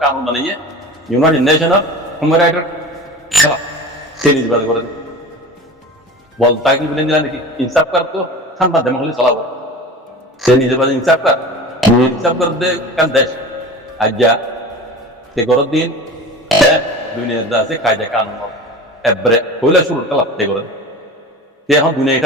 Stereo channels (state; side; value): normal; both; correlation 0.35